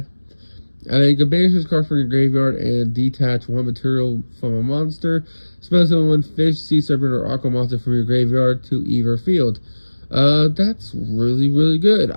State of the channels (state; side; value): inverted; both; correlation -1.00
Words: And then you can banish this card from your graveyard and detach one material from a monster. Spell summon one fish, sea serpent, or aqua monster from your graveyard to either field. That's really, really good.